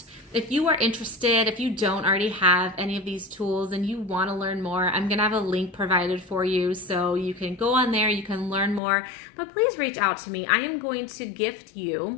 if you are interested, if you don't already have any of these tools and you want to learn more, I'm going to have a link provided for you. So you can go on there, you can learn more, but please reach out to me. I am going to gift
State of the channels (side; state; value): right; drops out; at 8.8 s